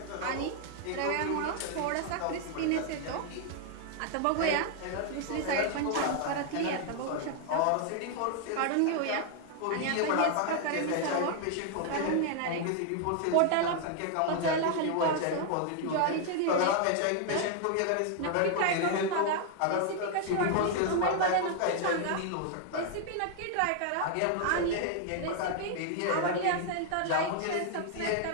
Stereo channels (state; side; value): different; both; correlation 0.00